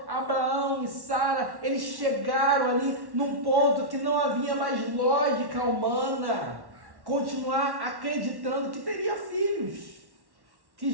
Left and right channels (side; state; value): left; late; 1.1 ms